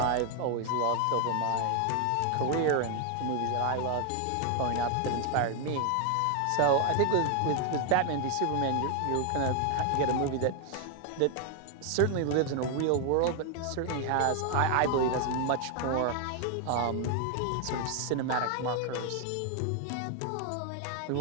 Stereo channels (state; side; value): different; both; correlation 0.01